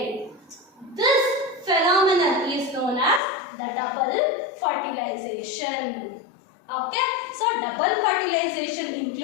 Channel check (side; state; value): right; drops out; at 3.2 s